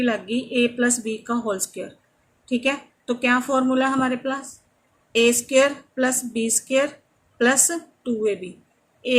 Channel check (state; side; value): identical; both; correlation 1.00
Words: लग गई A + B का होल स्क्वायर, ठीक है। तो क्या फॉर्मूला हमारे पास A² + B² + 2AB,